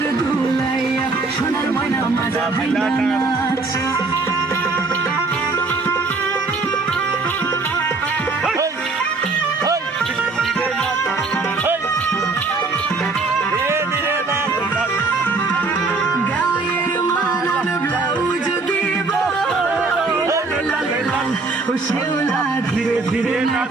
দুলাইয়া সোনার ময়না মাজা ভাঙ্গা নাচ শেওলা ধীরে ধীরে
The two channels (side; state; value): left; quieter; 3.8 dB